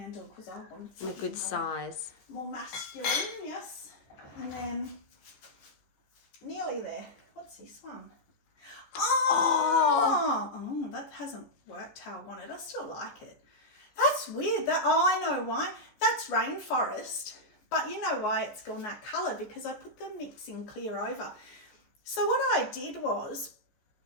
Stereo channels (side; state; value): right; late; 14 ms